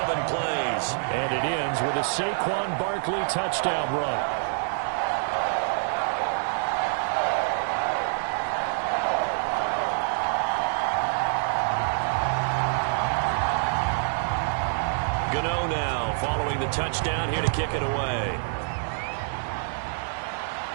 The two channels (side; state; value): left; silent; digital silence